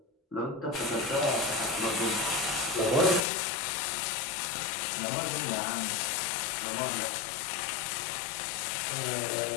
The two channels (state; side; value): drops out; right; at 3.2 s